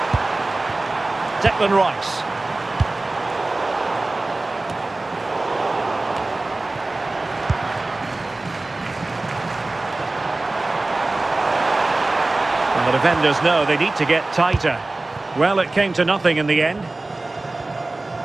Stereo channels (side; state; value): left; quieter; 3.0 dB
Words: Declan Rice. And the defenders know they need to get tighter. Well, it came to nothing in the end.